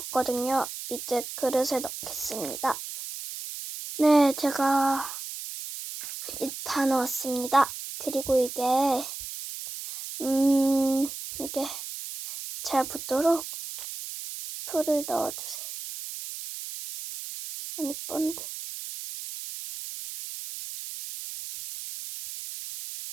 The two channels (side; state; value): right; noise; hiss, 9 dB below the sound